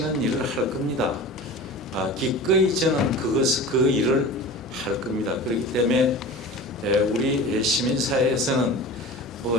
일을 할 겁니다. 기꺼이 저는 그 일을 할 겁니다. 그렇기 때문에 우리 시민사회에서는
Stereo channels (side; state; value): both; normal; correlation 0.35